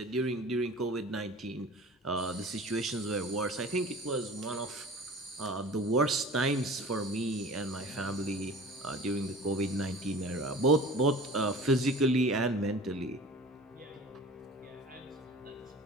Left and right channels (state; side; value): normal; both; correlation 0.41